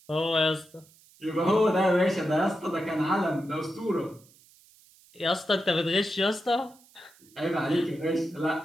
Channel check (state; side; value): noise; right; hiss, 28 dB below the sound